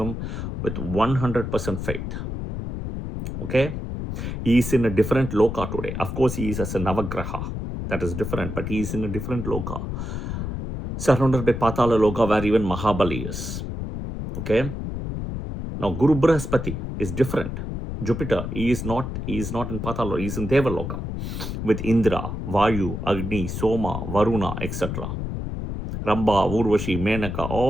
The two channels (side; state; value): left; noise; rumble, 5 dB below the sound